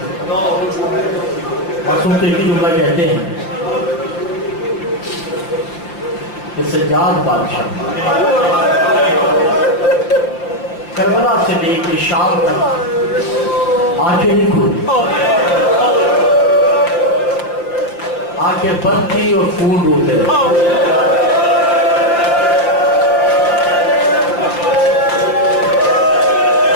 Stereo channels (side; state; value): right; late; 5.8 ms